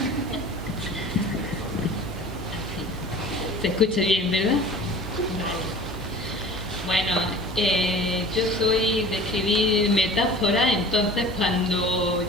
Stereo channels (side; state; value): both; normal; correlation 0.42